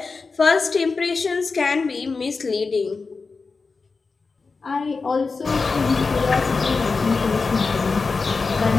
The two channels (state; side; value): quieter; right; 4.4 dB